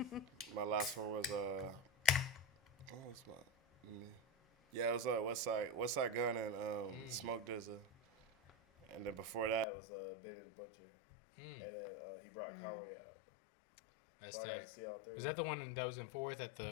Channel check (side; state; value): right; drops out; at 9.7 s